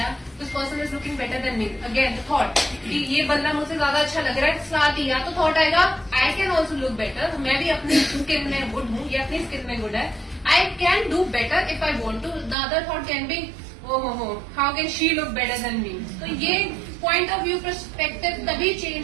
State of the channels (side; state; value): left; drops out; at 12.6 s